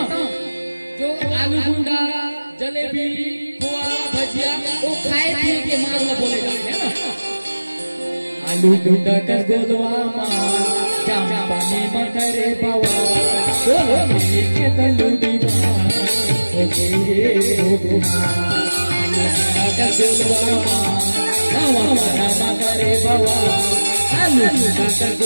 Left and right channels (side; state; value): both; inverted; correlation -1.00